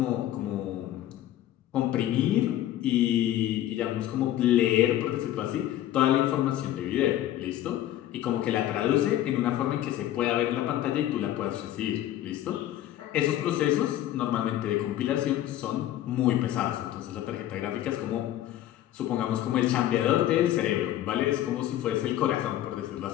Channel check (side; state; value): right; quieter; 13.0 dB